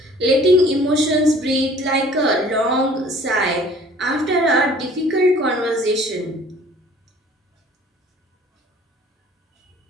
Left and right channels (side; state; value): both; normal; correlation 0.52